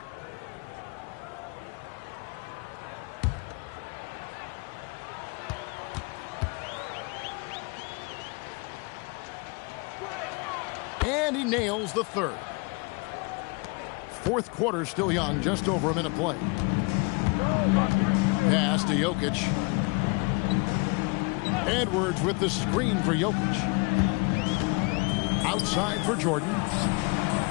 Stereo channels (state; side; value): quieter; right; 30.3 dB